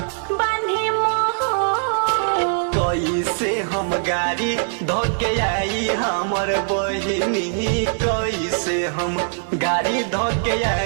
बांधे मोह। कैसे हम गाड़ी धोके आई हमर बहिनी, कैसे हम गाड़ी धोके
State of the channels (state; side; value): silent; left; 61 dB below the other